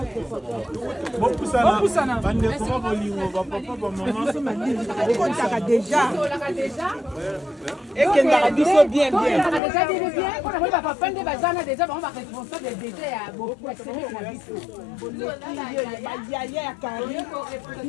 Déjà. Et qu'elle a dit ça bien, bien.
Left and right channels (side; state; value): right; drops out; at 9.6 s